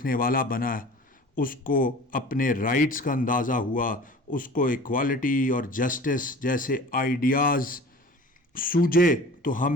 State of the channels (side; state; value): both; normal; correlation 0.42